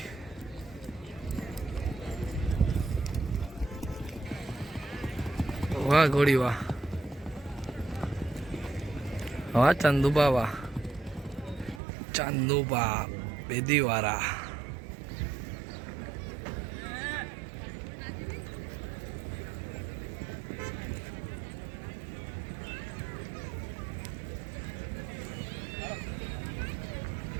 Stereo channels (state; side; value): drops out; left; at 11.8 s